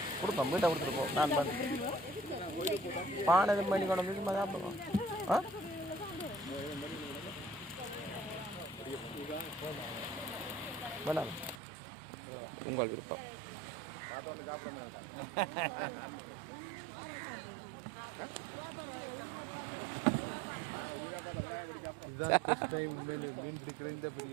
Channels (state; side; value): drops out; left; at 11.6 s